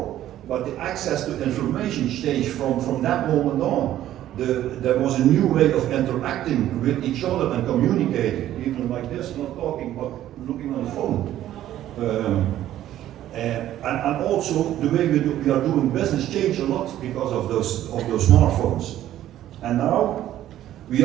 but the access to information changed from that moment on. There was a new way of interacting with each other and communicating, even like this, not talking, but looking on the phone. And also the way we are doing business changed a lot because of those smartphones. And now we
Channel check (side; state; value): left; quieter; 12.7 dB